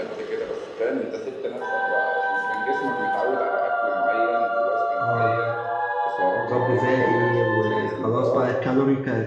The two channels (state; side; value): identical; both; correlation 1.00